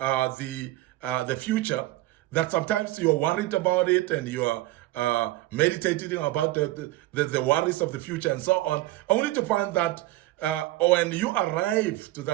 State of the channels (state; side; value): quieter; left; 17.0 dB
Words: future, that sometimes you're worried about it, and you're meditating about the worries of the future and so on, only to find that when you arrive to